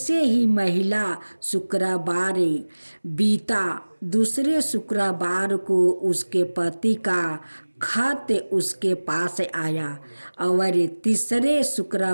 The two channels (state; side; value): inverted; both; correlation -1.00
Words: ही महिला शुक्रवार बीता, दूसरे शुक्रवार को उसके पति का खत उसके पास आया और तीसरे